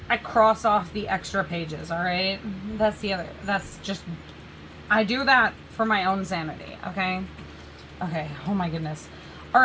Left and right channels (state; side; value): identical; both; correlation 1.00